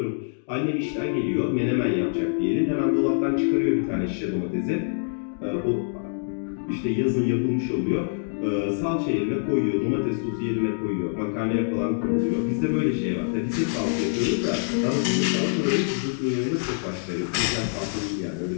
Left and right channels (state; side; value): silent; right; digital silence